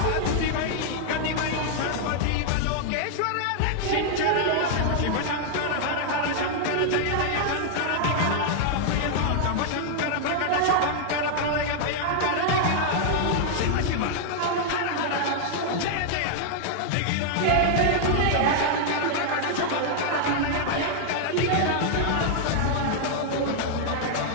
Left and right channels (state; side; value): different; both; correlation -0.01